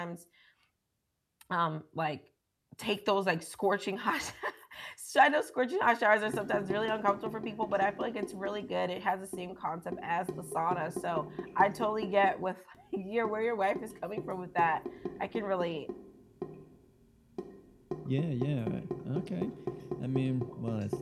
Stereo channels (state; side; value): identical; both; correlation 1.00